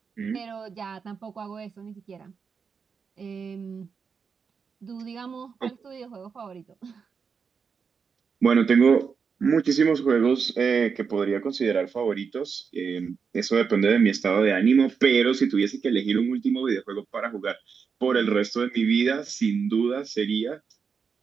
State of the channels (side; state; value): left; quieter; 5.9 dB